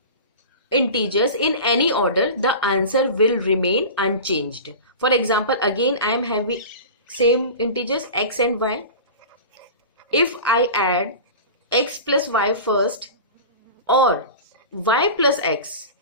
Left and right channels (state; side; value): inverted; both; correlation -0.32